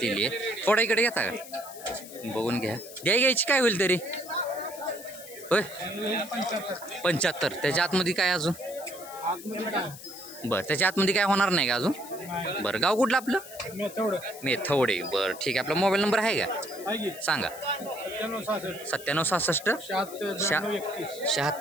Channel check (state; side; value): noise; left; hiss, 15 dB below the sound